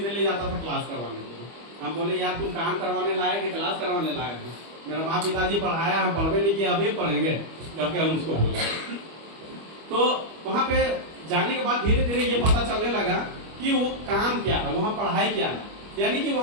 ले जाता था क्लास करवाने के लिए। हम बोले यार तुम काम करवाने लाए कि क्लास करवाने लाए हैं? मेरा माँ पिताजी पढ़ाया, हम पढ़वे नहीं किए, अभी पढ़ेंगे करके हम उसको बोला। तो वहाँ पे जाने के बाद धीरे धीरे ये पता चलने लगा कि वो काम क्या है, वहाँ पढ़ाई क्या है। यानी कि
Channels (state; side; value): late; left; 25 ms